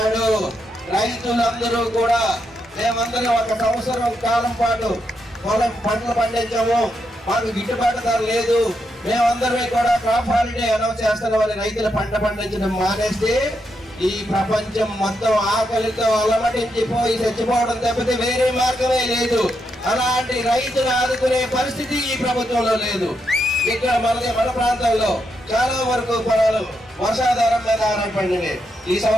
రైతులందరూ కూడా మేమందరం 1 సంవత్సరం కాలం పాటు పంటలు పండించాము, మాకు గిట్టుబాటు ధర లేదు, మేమందరం కూడా క్రాప్ హాలిడే అనౌన్స్ చేస్తున్నామని రైతులు పంట పండించడం మానేస్తే ఈ ప్రపంచం మొత్తం ఆకలితో అలమటించిపోయి చచ్చిపోవడం తప్పితే వేరే మార్గమే లేదు. అలాంటి రైతును ఆదుకునే పరిస్థితి ఈ ప్రభుత్వంలో లేదు. ఇక్కడ మన ప్రాంతంలో చాలా వరకు పొలాలు వర్షాధారం మీద ఆధారపడినవి. ఈ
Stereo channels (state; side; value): normal; both; correlation 0.82